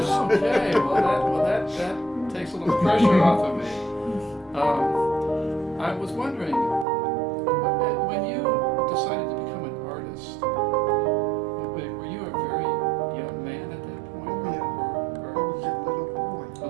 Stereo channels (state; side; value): drops out; left; at 6.9 s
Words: Okay, that takes a little pressure off of me. I was wondering, when you decided to become an artist, were you a very young man at that point? Oh, yeah. Or I was a little boy. a